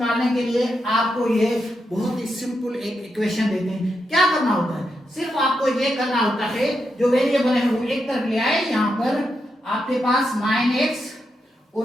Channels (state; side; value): normal; both; correlation 0.84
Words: के लिए आपको ये बहुत ही सिंपल एक इक्वेशन देते हैं। क्या करना होता है, सिर्फ आपको ये करना होता है, जो वेरिएबल है वो एक तरफ ले आए, यहाँ पर आपके पास 9x